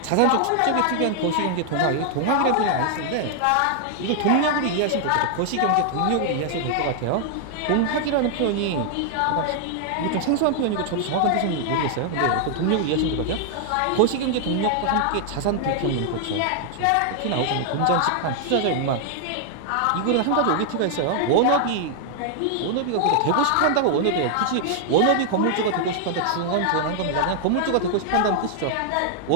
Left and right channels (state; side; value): different; both; correlation 0.00